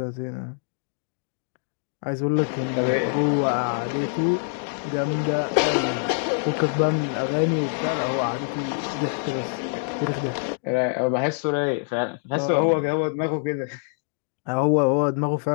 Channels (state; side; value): silent; right; digital silence